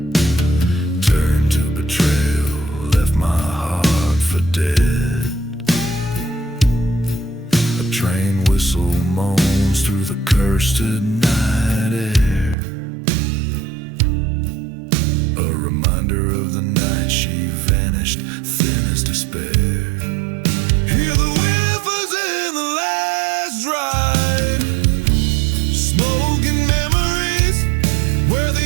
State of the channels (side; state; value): left; drops out; at 12.6 s